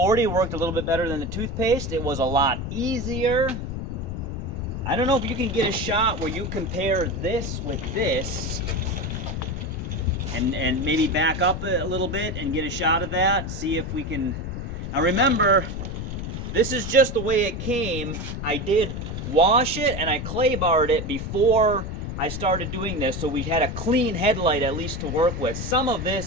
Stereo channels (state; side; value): noise; left; rumble, 6 dB below the sound